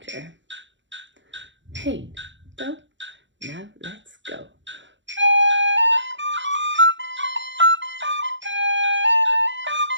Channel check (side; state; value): left; late; 0.54 ms